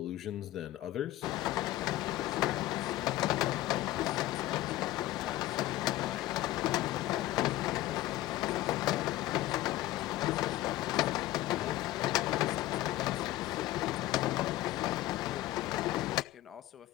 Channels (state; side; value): quieter; right; 16.0 dB